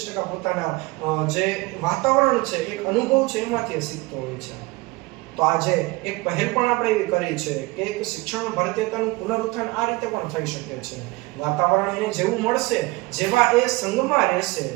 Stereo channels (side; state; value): left; quieter; 23.1 dB